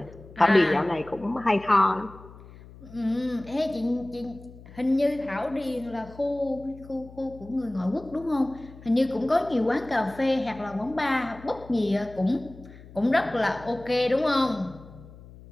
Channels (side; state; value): left; noise; hum, 19 dB below the sound